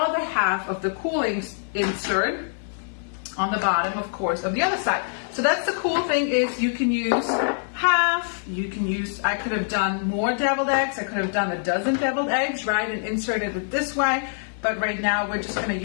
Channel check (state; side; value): silent; right; digital silence